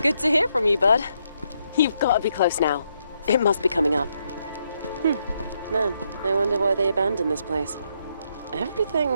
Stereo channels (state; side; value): inverted; both; correlation -0.77